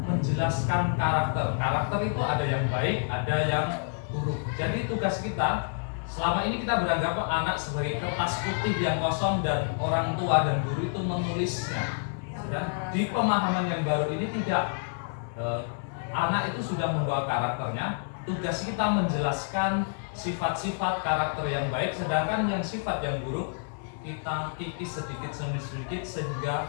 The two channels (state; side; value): silent; right; digital silence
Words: menjelaskan karakter. Karakter itu ada yang baik, ada yang buruk. Jadi tugas kita selama ini kita beranggap anak sebagai kertas putih yang kosong dan orang tua dan guru itu menulisnya. Dan di pemahaman yang baru ini tidak. Anak itu sudah membawa karakternya. Tugas kita menjelaskan sifat-sifat karakter yang baik, sedangkan yang sifat yang buruk kita kikis sedikit demi sedikit